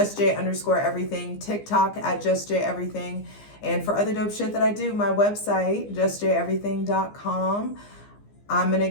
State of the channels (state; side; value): late; right; 15 ms